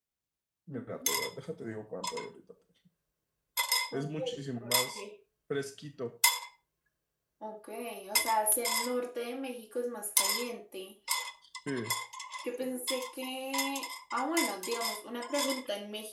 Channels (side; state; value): both; identical; correlation 1.00